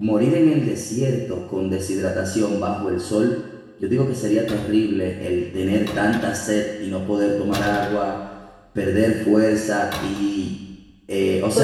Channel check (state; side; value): identical; both; correlation 1.00